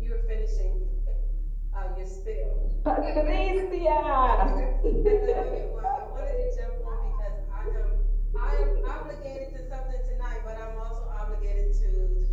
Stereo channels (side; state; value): both; identical; correlation 1.00